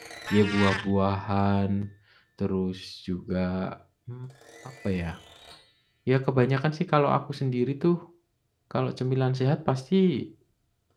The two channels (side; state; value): both; identical; correlation 1.00